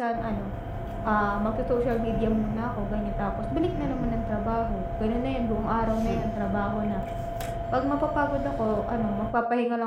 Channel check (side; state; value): both; identical; correlation 1.00